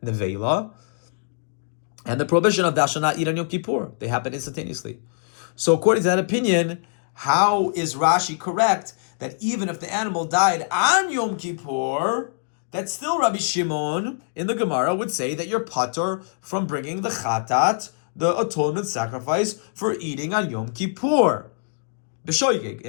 nevela, and the prohibition of thou shalt not eat on Yom Kippur, they happen instantaneously. So according to that opinion, how is Rashi correct that even if the animal died on Yom Kippur, that still Rabbi Shimon in the Gemara would say that you're patur from bringing the chatat, the atonement sacrifice, for eating on Yom Kippur? B'shoigig,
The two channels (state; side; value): silent; right; digital silence